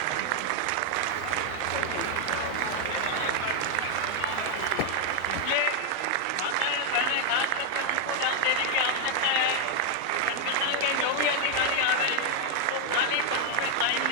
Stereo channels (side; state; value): both; different; correlation 0.00